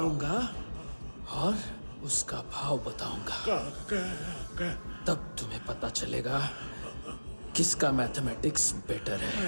और उसका भाव बताऊंगा। तब तुम्हें पता चलेगा किसका मैथमेटिक्स बेटर है?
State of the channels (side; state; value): both; inverted; correlation -1.00